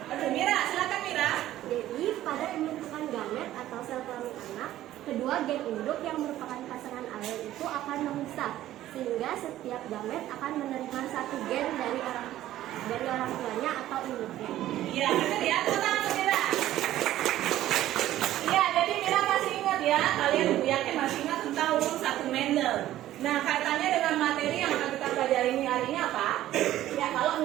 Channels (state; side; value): quieter; left; 13.7 dB